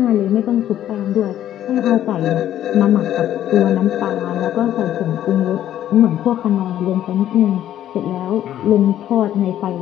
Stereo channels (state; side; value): quieter; right; 11.7 dB